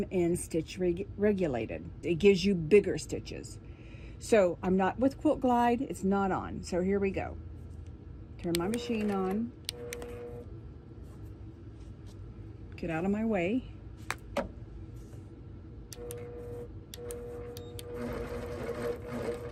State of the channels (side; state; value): both; identical; correlation 1.00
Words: in stitch regulated. It gives you bigger stitches. So I'm not with Quilt Glide, it's not on. So here we go. Turn my machine on. Get out of my way.